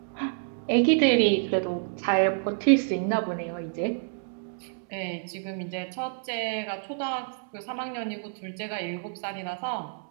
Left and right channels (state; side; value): silent; left; digital silence